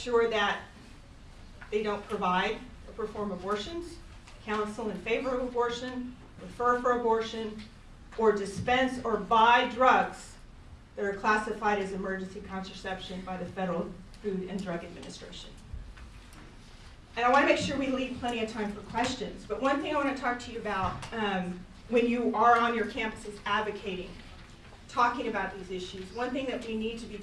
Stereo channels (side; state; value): both; identical; correlation 1.00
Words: that they don't provide or perform abortions, counsel in favor of abortion, refer for abortion, or dispense or buy drugs that are classified as emergency contraception by the Federal Food and Drug Administration. And I want to make sure we leave plenty of time for questions. But one thing I want to talk to you about when you are on your campuses advocating, talking about these issues, one thing that we need to be